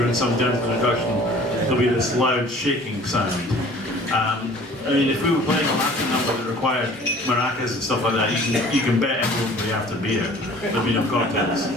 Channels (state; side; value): normal; both; correlation 0.49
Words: some gentle introduction there'll be this loud shaking sound. I mean, if we were playing a Latin number that required maracas and stuff like that, you can bet everyone would be after beer. There'd be no cocktails.